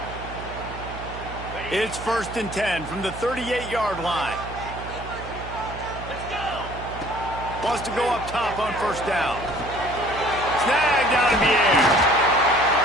It's first and 10 from the 38-yard line. Wants to go up top on first down. Snagged out of the air.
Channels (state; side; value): noise; right; hum, 11 dB below the sound